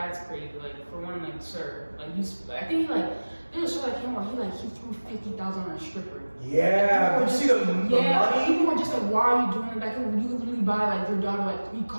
crazy. Like for one, like sir, like I think he like there was a show that came where he threw $50,000 on a stripper. Yeah, did you see the money? People were just like, why are you doing that? Like, you could literally buy like your daughter like 3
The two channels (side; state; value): both; inverted; correlation -1.00